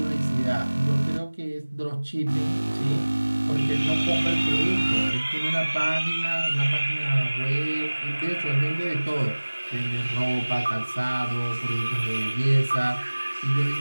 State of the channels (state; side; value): inverted; both; correlation -1.00